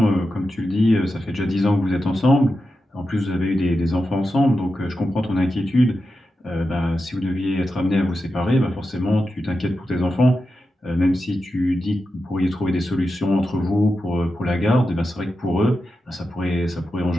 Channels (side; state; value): both; normal; correlation 0.90